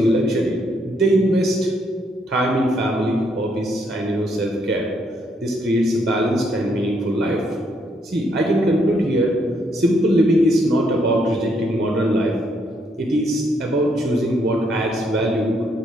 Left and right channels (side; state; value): both; normal; correlation 0.73